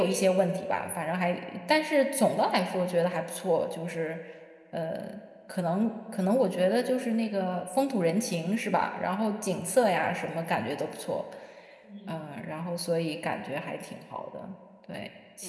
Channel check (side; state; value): both; identical; correlation 1.00